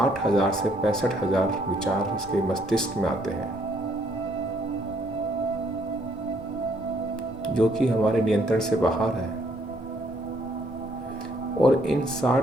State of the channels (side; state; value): both; normal; correlation 0.68